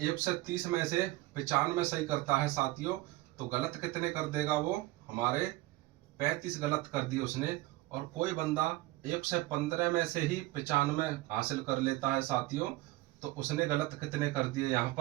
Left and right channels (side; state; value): left; quieter; 18.8 dB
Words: 1 से 30 में से 95 सही करता है साथियों, तो गलत कितने कर देगा वो, हमारे 35 गलत कर दिए उसने। और कोई बंदा 1 से 15 में से ही 95 हासिल कर लेता है साथियों, तो उसने गलत कितने कर दिए, यहाँ